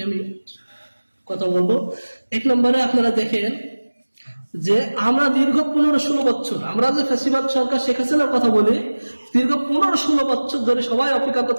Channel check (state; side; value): inverted; both; correlation -1.00